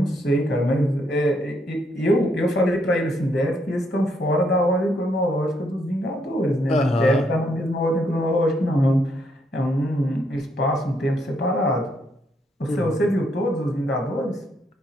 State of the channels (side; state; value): both; normal; correlation 0.74